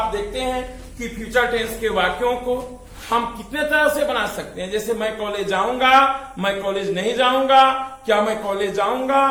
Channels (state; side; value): identical; both; correlation 1.00